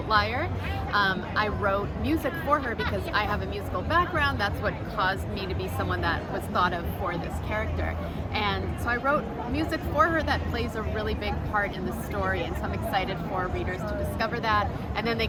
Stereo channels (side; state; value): both; identical; correlation 1.00